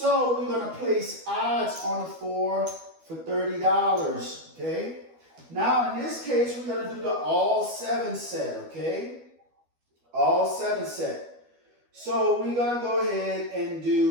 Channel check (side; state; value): left; late; 12 ms